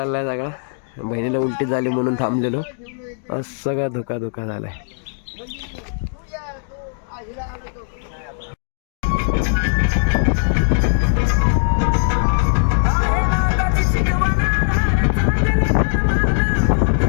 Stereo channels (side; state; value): right; silent; digital silence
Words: सगळा. बहिणीला उलटी झाली म्हणून थांबलेलो. सगळा धोका झालाय.